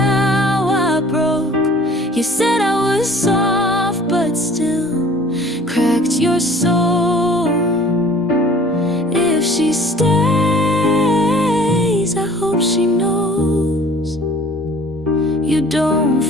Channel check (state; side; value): normal; both; correlation 0.51